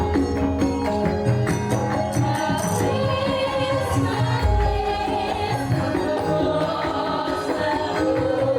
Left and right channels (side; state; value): both; identical; correlation 1.00